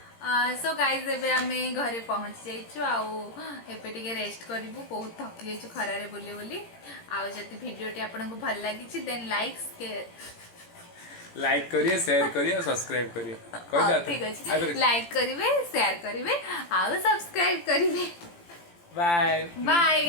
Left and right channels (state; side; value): late; right; 17 ms